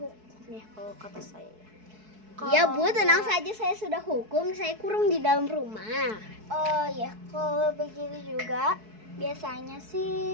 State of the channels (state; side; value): late; left; 4.6 ms